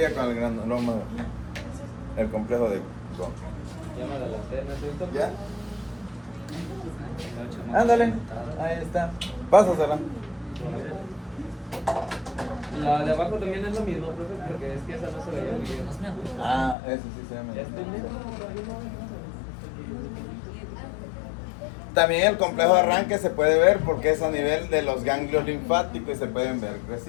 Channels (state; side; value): drops out; right; at 16.8 s